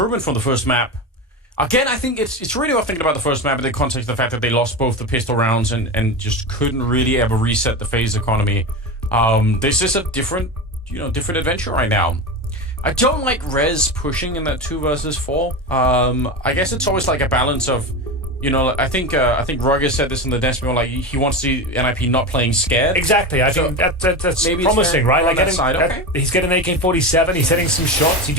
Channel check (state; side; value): normal; both; correlation 0.22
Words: from the first map. Again, I think it's really worth thinking about the first map in the context of the fact that they lost both the pistol rounds and just couldn't really ever reset the FaZe economy. This is a different adventure right now. I don't like Rez pushing in that 2 versus 4. I guess it's always like a balance of, I think Roger said this in the desk, like he wants to see NIP not playing scared. Exactly. I think that's promising, right? Like he's getting an AK-47. He's hitting some shots. He